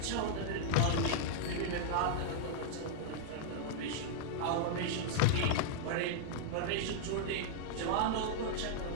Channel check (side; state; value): both; different; correlation -0.01